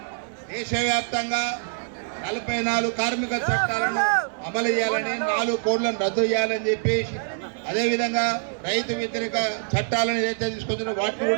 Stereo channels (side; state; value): left; silent; digital silence